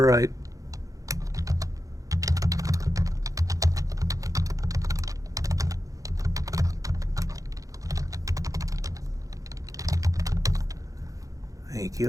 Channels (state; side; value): late; left; 0.16 ms